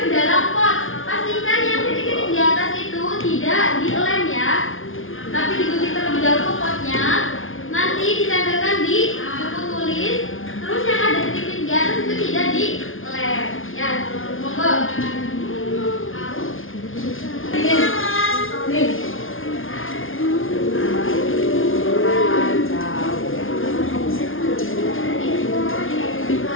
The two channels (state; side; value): late; right; 0.59 ms